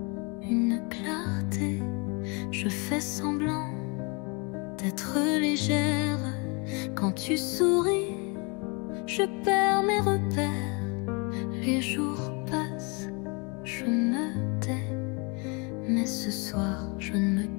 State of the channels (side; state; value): right; quieter; 31.3 dB